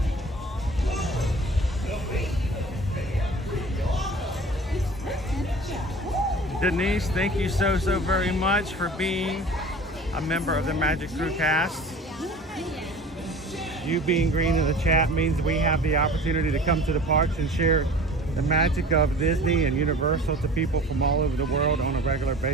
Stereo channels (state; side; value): normal; both; correlation 0.42